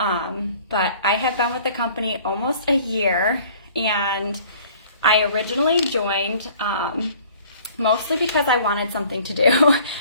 I have been with the company almost a year, and I originally joined mostly because I wanted something to do,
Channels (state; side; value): inverted; both; correlation -0.52